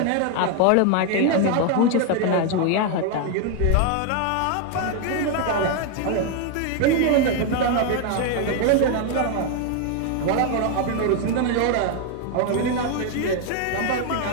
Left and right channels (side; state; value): both; different; correlation 0.01